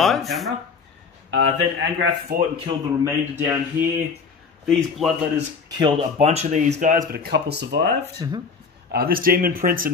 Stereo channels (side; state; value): right; quieter; 5.3 dB